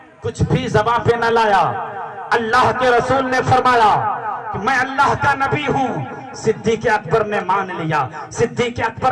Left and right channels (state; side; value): identical; both; correlation 1.00